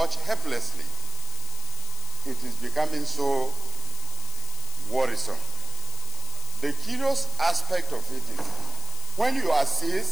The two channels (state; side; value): noise; left; hiss, 7 dB below the sound